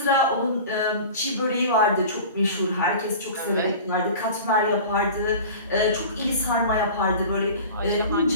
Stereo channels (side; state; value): both; inverted; correlation -0.37